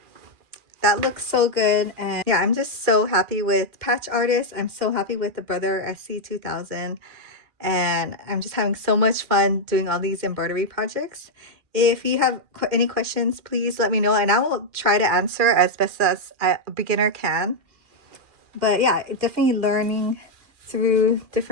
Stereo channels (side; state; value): left; late; 2.4 ms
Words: that looks so good. And yeah, I'm just so happy with Patch Artist. I'm so happy with the Brother SC2000. And I'm just having so much fun doing all these embroidery projects. If you have any questions, please let me know, and I will try to answer as best as a beginner can. But yeah, definitely learning through